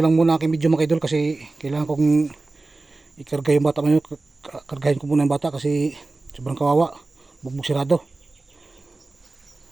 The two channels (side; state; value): left; quieter; 3.3 dB